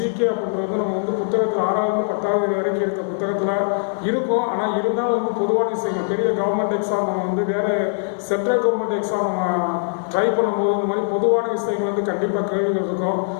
அப்படின்றது வந்து நம்ம வந்து புத்தகத்தில் 6வது 10வது வரைக்கும் இருக்க புத்தகத்தில் இருக்கும். ஆனால் இருந்தாலும் வந்து பொதுவான விஷயங்கள், பெரிய கவர்மெண்ட் எக்ஸாம் நம்ம வந்து வேறு சென்ட்ரல் கவர்மெண்ட் எக்ஸாம் நம்ம ட்ரை பண்ணும்போது இந்த மாதிரி பொதுவான விஷயங்கள் வந்து கண்டிப்பாக கேள்விகள் இருக்கும்.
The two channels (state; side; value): silent; right; digital silence